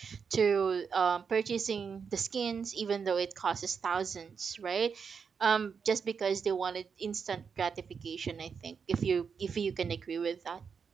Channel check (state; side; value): quieter; left; 6.1 dB